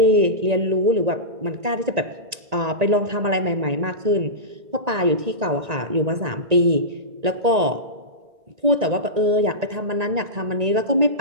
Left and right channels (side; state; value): left; late; 1.9 ms